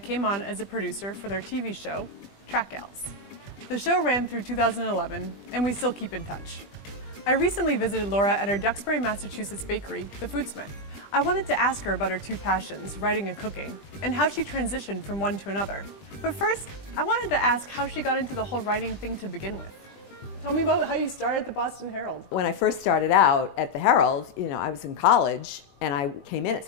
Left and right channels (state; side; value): late; right; 20 ms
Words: on as a producer for their TV show, Track Gals. The show ran through 2011 and we still keep in touch. I recently visited Laura at her Duxbury, Massachusetts bakery, the Foodsmith. I wanted to ask her about her two passions, writing and cooking, and how she transitioned from one to another. But first, I wanted to ask how she got into the whole writing thing to begin with. Tell me about how you started at the Boston Herald. When I first started out at the Herald, I was in college and I came in at